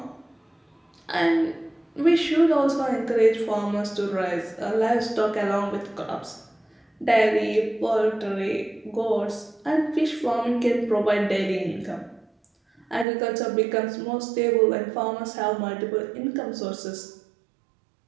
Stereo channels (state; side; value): drops out; left; at 13.1 s